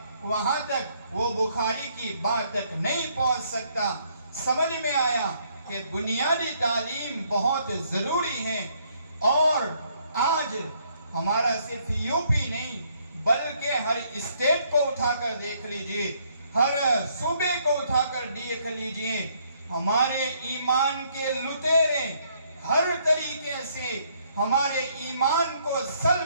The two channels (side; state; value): both; inverted; correlation -0.68